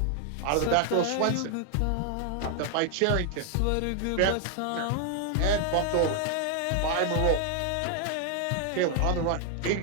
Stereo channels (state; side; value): different; both; correlation 0.00